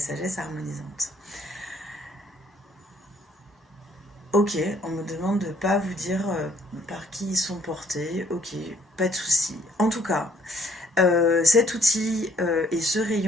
harmonisante. Ok, on me demande de ne pas vous dire par qui ils sont portés. Ok, pas de souci. En tout cas, cet outil et ce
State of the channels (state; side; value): normal; both; correlation 0.64